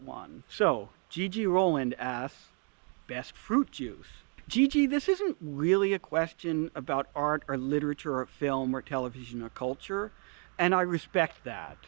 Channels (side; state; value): left; quieter; 39.5 dB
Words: one. So, Gigi Roland asks, best fruit juice? Gigi, this isn't really a question about art or literature or film or television or culture, and I respect that.